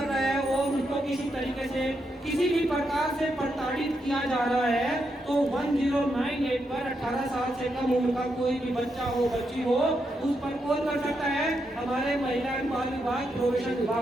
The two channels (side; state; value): both; normal; correlation 0.82